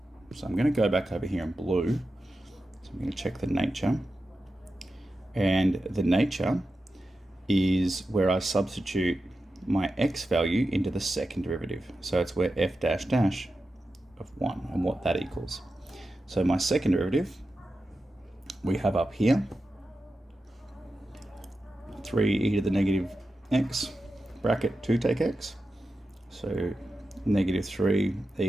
So I'm going to go back over here in blue. So I'm going to check the nature. And the nature is where I substitute my x value into the second derivative. So it's where f dash dash of 1 and what that equals. So my second derivative we have up here 3e to the negative x bracket 2 take x. So negative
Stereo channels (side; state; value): both; normal; correlation 0.91